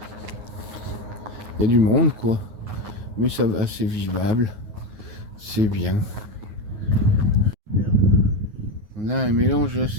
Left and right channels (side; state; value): left; late; 9.5 ms